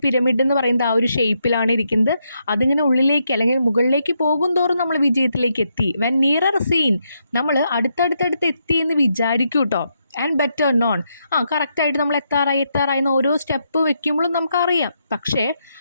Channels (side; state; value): both; inverted; correlation -0.80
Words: പിരമിഡ് എന്ന് പറയുന്നത് ആ ഒരു ഷേപ്പിലാണ് ഇരിക്കുന്നത്. അതിങ്ങനെ ഉള്ളിലേക്ക് അല്ലെങ്കിൽ മുകളിലേക്ക് പോകും തോറും നമ്മൾ വിജയത്തിലേക്ക് എത്തി. വെൻ നിയറർ സീൻ, നമ്മൾ അടുത്തടുത്ത് എത്തി എന്ന് വിചാരിക്കും കേട്ടോ. ആൻഡ് ബെറ്റർ നോൺ, കറക്റ്റായിട്ട് നമ്മൾ എത്താറായി എന്ന് ഓരോ സ്റ്റെപ്പ് വെക്കുമ്പോഴും നമുക്കറിയാം. പക്ഷേ